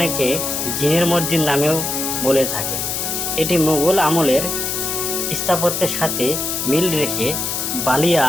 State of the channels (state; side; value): noise; left; hiss, 2 dB below the sound